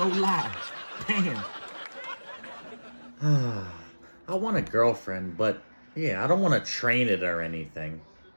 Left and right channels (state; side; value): inverted; both; correlation -1.00